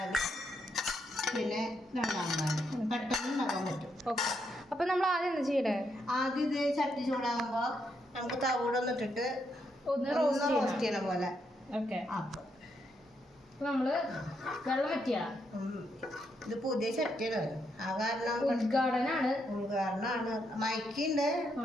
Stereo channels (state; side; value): normal; both; correlation 0.79